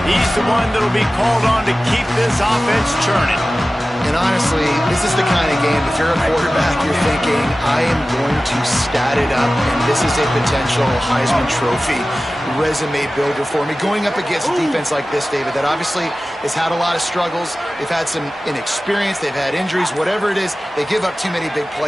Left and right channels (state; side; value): normal; both; correlation 0.96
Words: He's the one that'll be called on to keep this offense churning. And honestly, this is the kind of game, if you're a quarterback, you're thinking, I am going to stat it up, and this is a potential Heisman Trophy resume builder for me. Going up against a defense like this, David, that obviously has had a lot of struggles. They've had some inexperience. They've had injuries. Whatever it is, they give up too many big